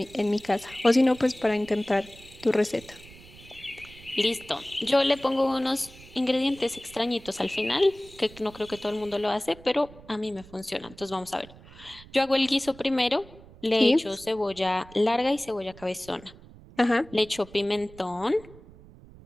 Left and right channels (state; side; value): noise; right; rumble, 21 dB below the sound